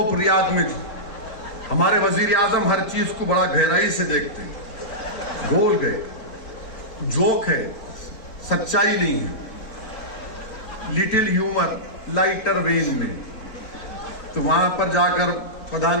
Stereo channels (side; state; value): right; late; 4.5 ms